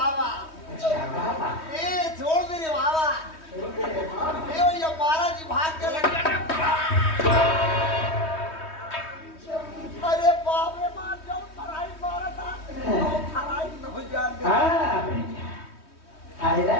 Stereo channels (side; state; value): right; late; 3.2 ms